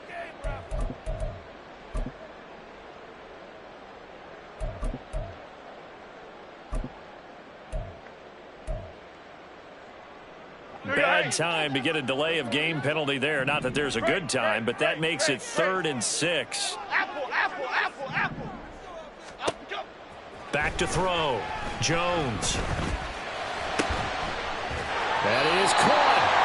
Bad time to get a delay of game penalty there. Not that there's a good time, but that makes it 3rd and 6. Apple. Back to throw. Jones. That is caught.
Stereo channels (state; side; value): identical; both; correlation 1.00